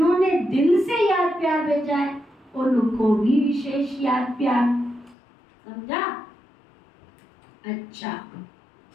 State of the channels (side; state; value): right; drops out; at 5.2 s